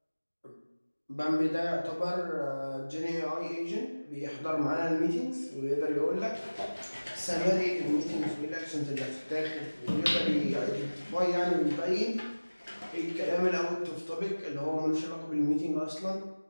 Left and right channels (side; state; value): both; inverted; correlation -1.00